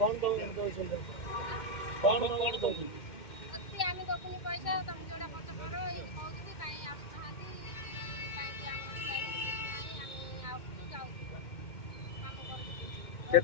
ଦଉଛନ୍ତି? କଣ ଦଉଛନ୍ତି? ଆମେ ଦବୁନି ପଇସା, ତମେ ଯୋଉଟା ଖର୍ଚ୍ଚ କର ଏମିତି କହୁଛନ୍ତି। କାହିଁ ଆସୁନାହାନ୍ତି, କାହିଁକି ଆମର ନାହିଁ। ଆମେ ଆସୁଛୁ ଯାଉଛୁ, କାମ କରୁଛୁ।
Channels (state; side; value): late; right; 2.2 ms